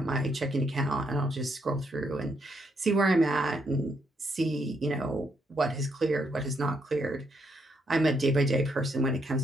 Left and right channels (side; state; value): both; normal; correlation 0.76